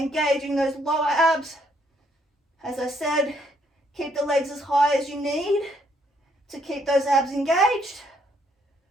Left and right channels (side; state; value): both; normal; correlation 0.70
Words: those lower abs. As I said, keep the legs as high as you need to keep those abs engaged.